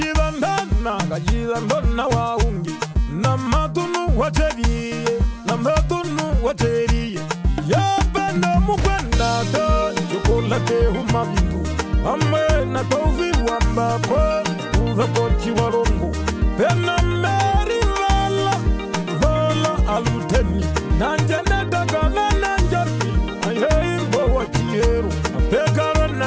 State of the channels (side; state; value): both; identical; correlation 1.00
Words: wahungi Namatunu wateriye Yapendo mukwenda to Chokolate humavingu Amwe na tofi wambako Uvekoti warongo Pena meri vala aluteni Nanjene takana nanjani Ayembo wachiheru Apekaro